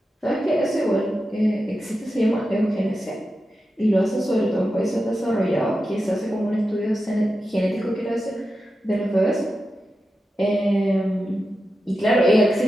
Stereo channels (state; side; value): normal; both; correlation 0.90